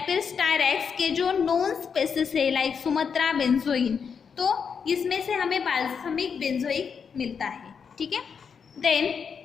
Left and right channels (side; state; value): right; quieter; 6.4 dB